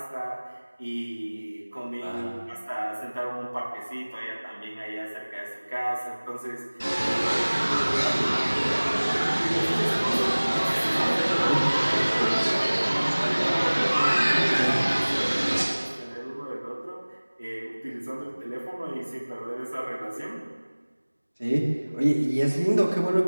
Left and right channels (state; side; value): inverted; both; correlation -1.00